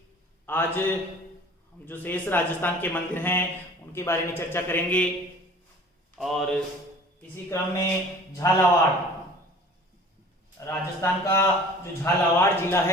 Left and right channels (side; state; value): both; normal; correlation 0.47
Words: आज हम जो शेष राजस्थान के मंदिर हैं उनके बारे में चर्चा करेंगे। और इसी क्रम में झालावाड़, राजस्थान का जो झालावाड़ जिला